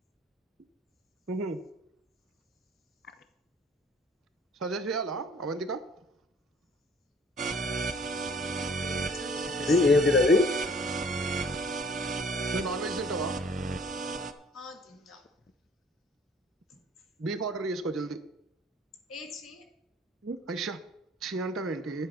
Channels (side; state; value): both; normal; correlation 0.55